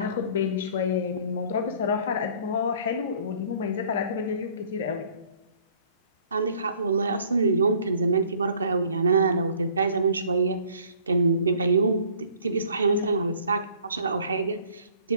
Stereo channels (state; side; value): inverted; both; correlation -0.55